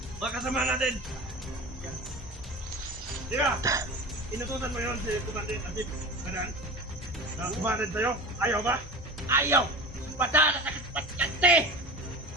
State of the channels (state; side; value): normal; both; correlation 0.32